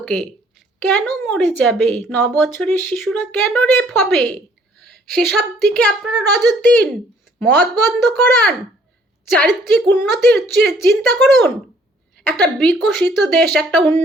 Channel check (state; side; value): normal; both; correlation 0.61